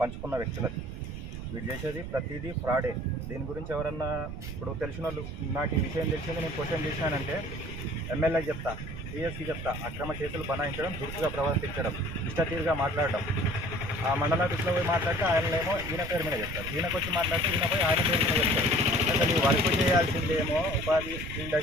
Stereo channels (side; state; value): right; noise; rumble, 8 dB below the sound